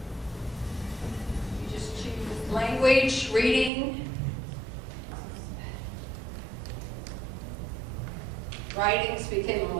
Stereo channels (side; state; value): left; drops out; at 3.7 s